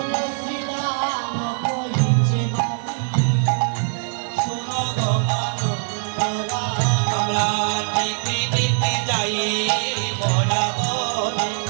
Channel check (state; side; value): silent; left; 64 dB below the other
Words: শ্রীরাম কহিছে বাণী, শুনো গো মানব রানী। আমরা নীতি নীতি যাই মরা বনে।